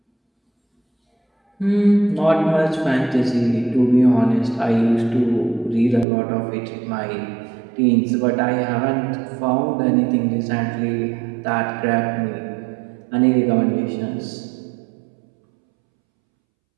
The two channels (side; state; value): left; drops out; at 6.1 s